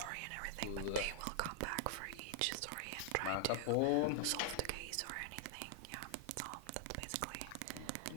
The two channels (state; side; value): different; both; correlation -0.01